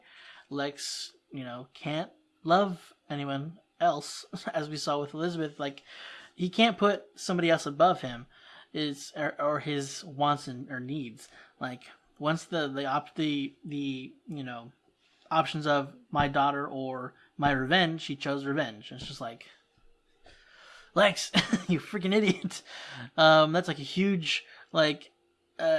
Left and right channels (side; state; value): both; identical; correlation 1.00